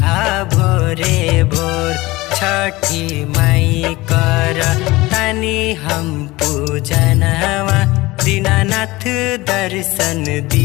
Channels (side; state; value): right; quieter; 20.3 dB